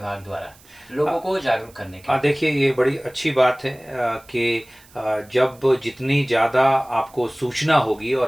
द्वारा लोगों को जागरूक करने के लिए? देखिए, ये बड़ी अच्छी बात है कि जब जितनी ज़्यादा आपको सूचना होगी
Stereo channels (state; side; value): noise; right; hiss, 26 dB below the sound